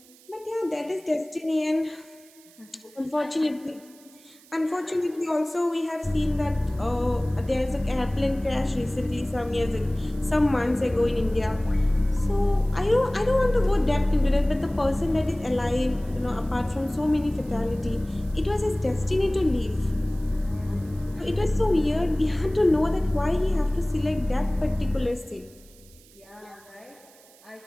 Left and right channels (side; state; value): right; noise; hiss, 26 dB below the sound